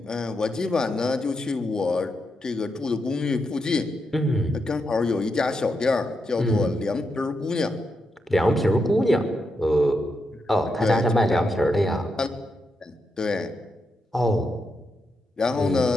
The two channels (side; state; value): both; normal; correlation 0.84